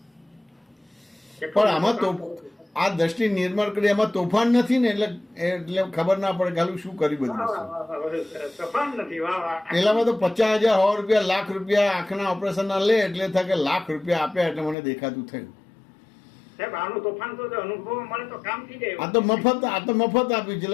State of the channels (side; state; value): right; drops out; at 14.8 s